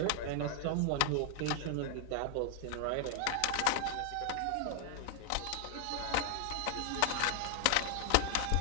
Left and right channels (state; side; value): different; both; correlation 0.00